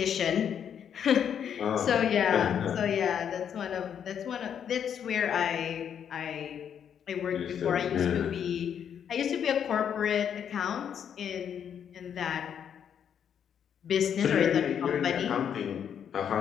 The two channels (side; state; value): right; quieter; 8.4 dB